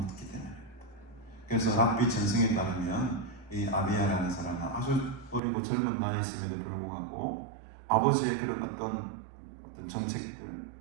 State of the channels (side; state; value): left; drops out; at 5.4 s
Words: 때문입니다. 그래서 랍비 전승에 따르면 이 아비야라는 사람은 아주 어리고 젊은 나이였음에도 불구하고 아버지의 그런 어떤 정책들,